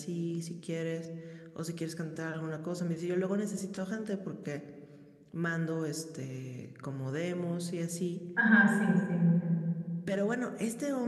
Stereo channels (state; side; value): identical; both; correlation 1.00